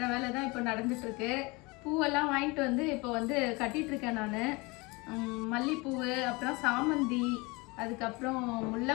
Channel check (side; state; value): right; quieter; 25.7 dB